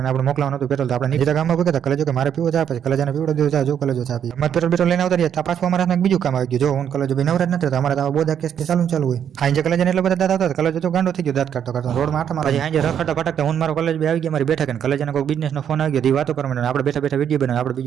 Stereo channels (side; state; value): left; quieter; 8.8 dB